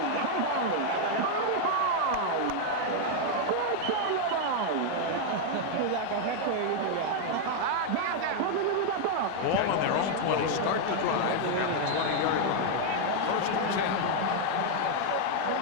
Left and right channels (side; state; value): both; different; correlation 0.00